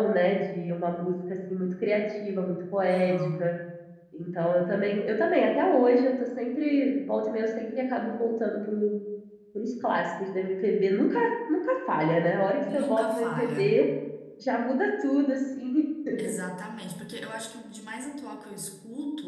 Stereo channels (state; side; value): identical; both; correlation 1.00